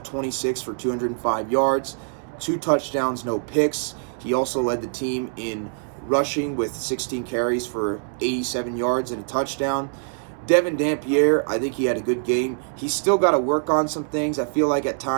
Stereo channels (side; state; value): left; silent; 63 dB below the other